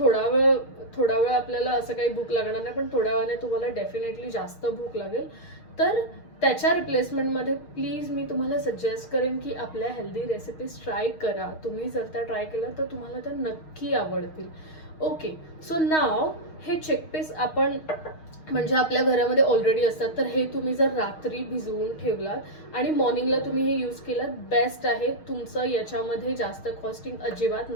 थोडा वेळ आपल्याला असं काही भूक लागणार नाही, पण थोड्या वेळाने तुम्हाला डेफिनेटली जास्त भूक लागेल. तर त्याच्या रिप्लेसमेंटमध्ये प्लीज मी तुम्हाला सजेस्ट करेन की आपल्या हेल्दी रेसिपीज ट्राय करा. तुम्ही जर त्या ट्राय केल्या तर तुम्हाला त्या नक्की आवडतील. ओके, सो नाव हे चिकपीस आपण म्हणजे आपल्या घरामध्ये ऑलरेडी असतात, तर हे तुम्ही जर रात्री भिजवून ठेवलात आणि मॉर्निंगला तुम्ही हे यूज केलात, बेस्ट आहे. तुमचं याच्यामध्ये जास्त कॉस्टिंग अजिबात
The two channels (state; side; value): late; right; 6.4 ms